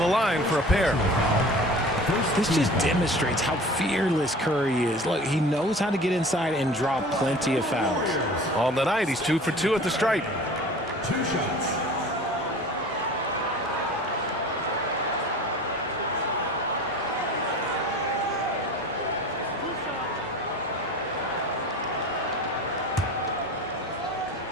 line for a pair. This just demonstrates how fearless Curry is. Look, he knows how to get inside and draw plenty of fouls. On the night, he's 2 for 2 at the stripe. 2 shots.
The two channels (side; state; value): both; normal; correlation 0.41